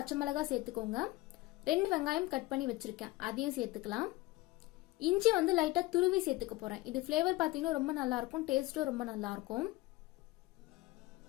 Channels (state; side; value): quieter; right; 19.0 dB